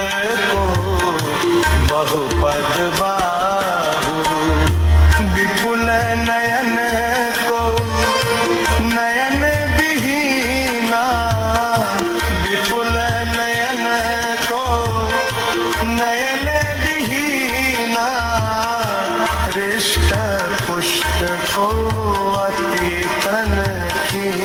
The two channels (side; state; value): both; identical; correlation 1.00